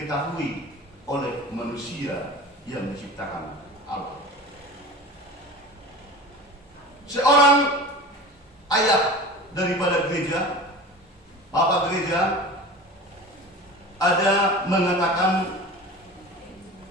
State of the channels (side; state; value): both; normal; correlation 0.35